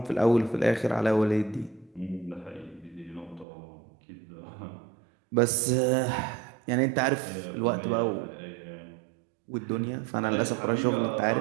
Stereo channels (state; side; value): drops out; left; at 3.5 s